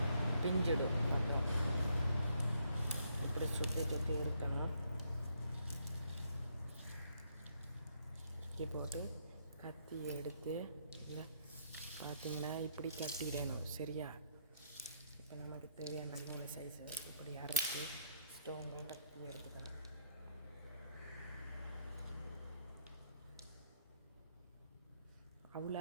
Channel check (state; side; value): inverted; both; correlation -0.74